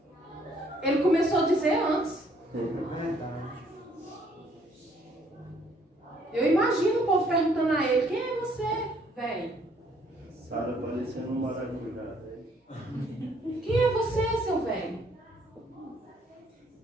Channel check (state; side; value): normal; both; correlation 0.65